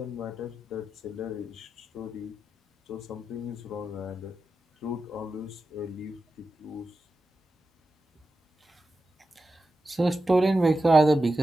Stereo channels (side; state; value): both; normal; correlation 0.91